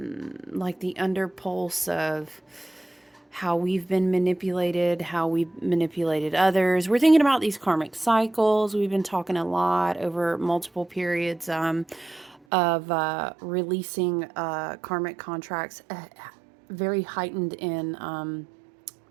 the underpulse of how we've been manipulated, how we've manipulated others. We're thinking about these karmic cycles. We've been talking a lot over multiple periods of releasing karmic contracts, very heightened in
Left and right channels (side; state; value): left; drops out; at 12.4 s